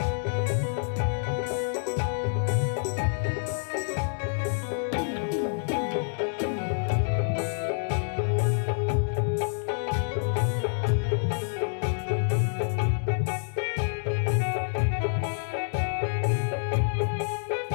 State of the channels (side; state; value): right; silent; digital silence